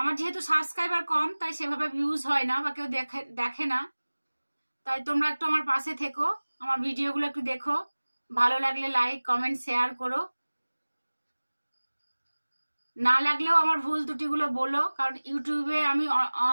যেহেতু সাবস্ক্রাইবার কম, তাই সেভাবে ভিউজ হয় না বা কেউ দেখে না। তাই তোমরা একটু আমার পাশে থেকো, আমার ভিডিওগুলো একটু দেখো, ভালো লাগলে লাইক কমেন্ট শেয়ার করো। না লাগলেও আমার ভুল ত্রুটিগুলো বলো, কারণ ইউটিউবে আমি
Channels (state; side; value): inverted; both; correlation -1.00